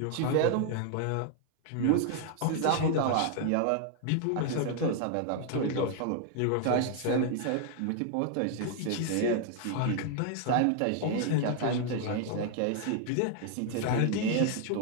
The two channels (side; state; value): both; different; correlation 0.00